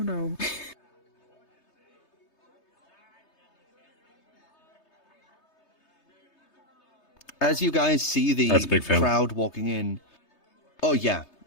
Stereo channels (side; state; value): right; late; 3.3 ms